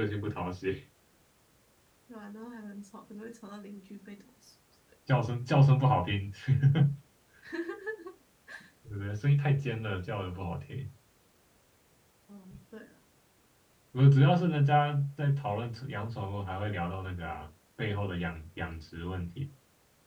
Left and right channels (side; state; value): both; identical; correlation 1.00